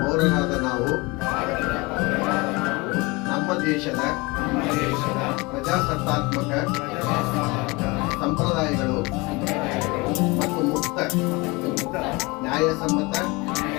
ನಾವು ನಮ್ಮ ದೇಶದ ಪ್ರಜಾಸತ್ತಾತ್ಮಕ ಸಂಪ್ರದಾಯಗಳು ಮತ್ತು ಮುಕ್ತ ನ್ಯಾಯಸಮ್ಮತ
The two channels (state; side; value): quieter; right; 25.2 dB